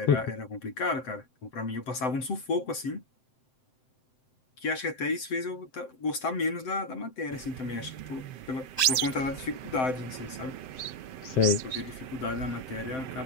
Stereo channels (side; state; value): right; late; 7.7 ms